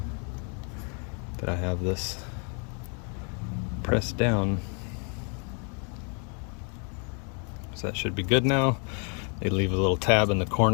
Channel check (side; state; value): right; quieter; 38.8 dB